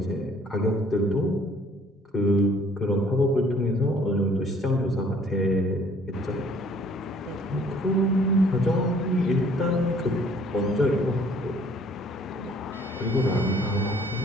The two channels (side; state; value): both; normal; correlation 0.58